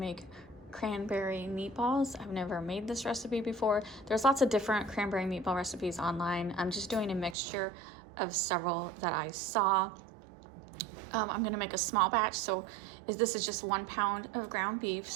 cranberry meatballs. I've never made this recipe before. There's lots of different cranberry meatball recipes online. I'm just doing a mixture of several that I saw. I'm gonna make a small batch, so this is just 1 pound of ground beef.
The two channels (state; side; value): drops out; left; at 7.4 s